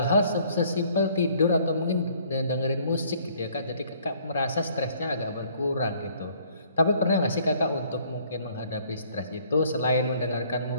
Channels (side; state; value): both; inverted; correlation -0.60